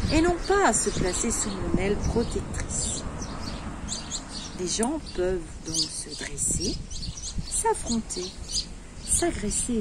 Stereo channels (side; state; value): both; identical; correlation 1.00